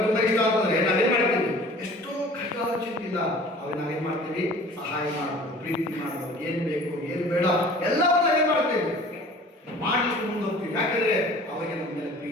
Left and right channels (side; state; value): both; normal; correlation 0.46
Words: ತುಂಬ ಇಷ್ಟ ಅಂತಂದ್ರೆ ನಾವೇನ್ ಮಾಡ್ತೀವಿ, ಎಷ್ಟೋ ಕಷ್ಟವಾದ ಚಿಂತೆಯಿಂದ ಅವ್ರಿಗೆ ನಾವೇನ್ ಮಾಡ್ತೀವಿ, ಸಹಾಯ ಮಾಡೋದು, ಪ್ರೀತಿ ಮಾಡೋದು, ಏನ್ ಬೇಕು ಏನ್ ಬೇಡ ಎಲ್ಲವನ್ನ ಏನ್ ಮಾಡ್ತೇವೆ, ಮಾಡ್ಲಿಕ್ಕೆ ಮುಂದೆ ಹೋಗ್ತೀವಿ. ಯಾಕಂದ್ರೆ ಅವರಿಗೆ ನಮ್ಮ ಮೇಲೆ